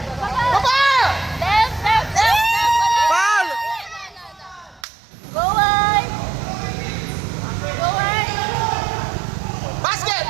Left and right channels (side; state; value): left; drops out; at 4.8 s